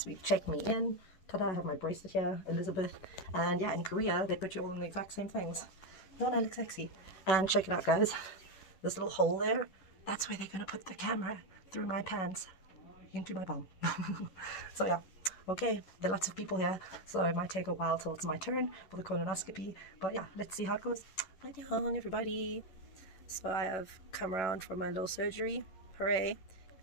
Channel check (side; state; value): right; late; 11 ms